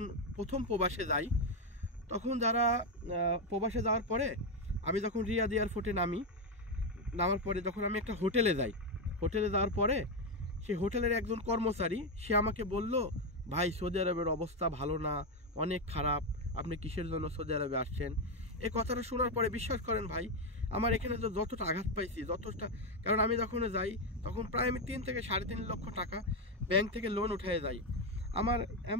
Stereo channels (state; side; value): normal; both; correlation 0.07